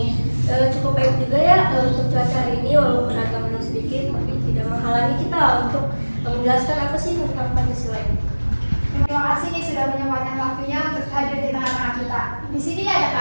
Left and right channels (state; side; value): inverted; both; correlation -1.00